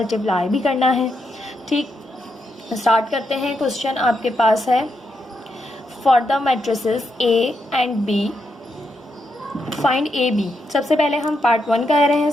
भी करना है। ठीक, स्टार्ट करते हैं। क्वेश्चन आपके पास है, for the matrices A and B find A B. सबसे पहले हम पार्ट 1 कह रहे हैं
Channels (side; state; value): both; normal; correlation 0.82